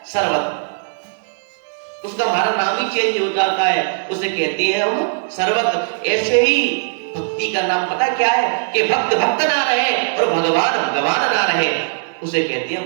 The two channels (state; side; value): silent; left; 64 dB below the other